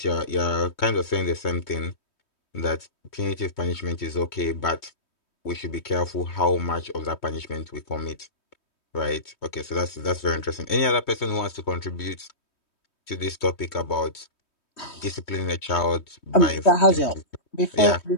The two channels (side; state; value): right; late; 3.2 ms